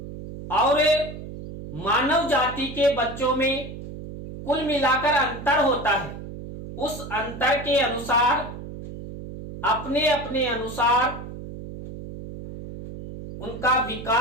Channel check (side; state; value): right; noise; hum, 11 dB below the sound